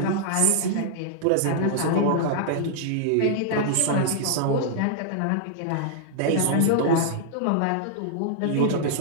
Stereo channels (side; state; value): both; different; correlation -0.01